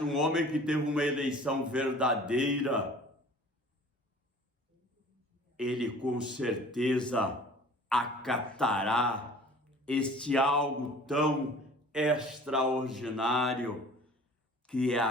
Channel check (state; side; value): normal; both; correlation 0.47